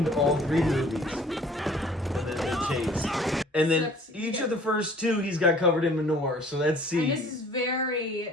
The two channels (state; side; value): normal; both; correlation 0.53